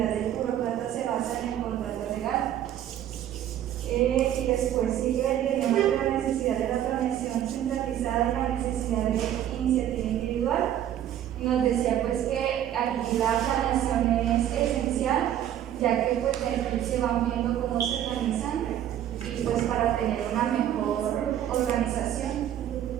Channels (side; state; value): left; quieter; 11.2 dB